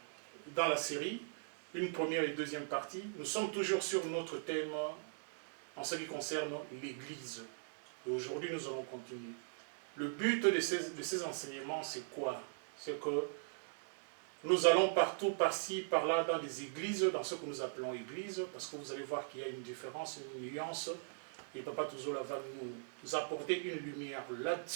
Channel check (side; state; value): left; silent; digital silence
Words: dans la série, une première et deuxième partie. Nous sommes toujours sur notre thème en ce qui concerne l'Église. Et aujourd'hui, nous allons continuer. Le but de ces enseignements, c'est quoi? C'est que nous allons partout, par-ci, par-là, dans des églises, dans ce que nous appelons églises, parce que vous allez voir qu'il y a une différence, une nuance, et Papa Touzola va nous apporter une lumière